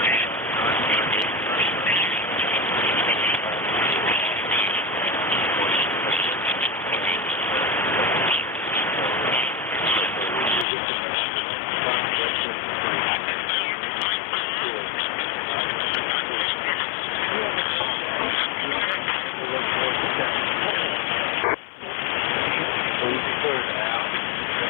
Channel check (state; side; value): drops out; right; at 10.7 s